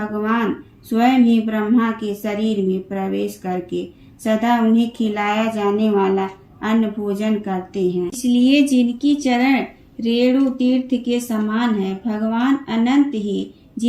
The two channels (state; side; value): identical; both; correlation 1.00